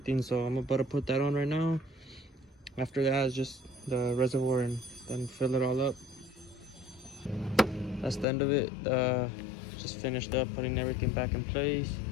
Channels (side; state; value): right; drops out; at 8.2 s